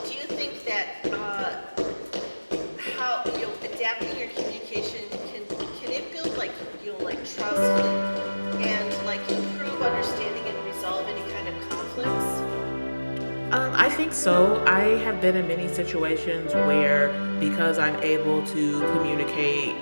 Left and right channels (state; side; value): inverted; both; correlation -1.00